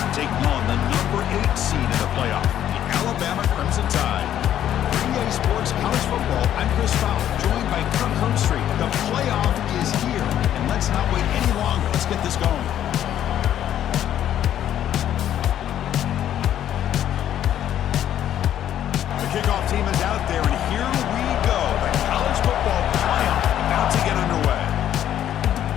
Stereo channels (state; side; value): quieter; right; 11.0 dB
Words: taking on the number 8 seed in the playoff, the Alabama Crimson Tide. EA Sports College Football, I'm Chris Fowler, joined by Kirk Herbstreit. The playoff is here, and let's not wait any longer. Let's get this going. The kickoff team is out there, and here we go. The college football playoff about to get underway.